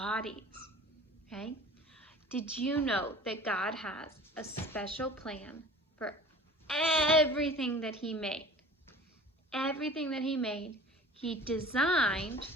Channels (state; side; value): normal; both; correlation 0.43